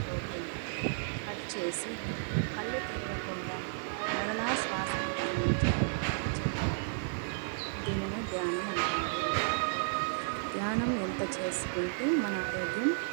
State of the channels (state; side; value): silent; left; 56 dB below the other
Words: పోకుండా కట్ చేసి కళ్ళు తెరవకుండా మరలా శ్వాసను గమనించాలి. దీనినే ధ్యానం అంటారు. ధ్యానం ఎంత చేసుకుంటే మన ఆరోగ్యం